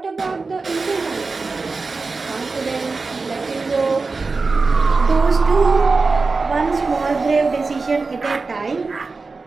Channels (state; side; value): quieter; left; 4.1 dB